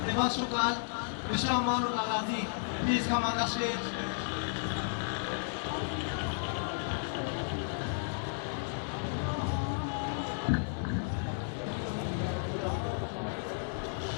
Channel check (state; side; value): silent; right; 56 dB below the other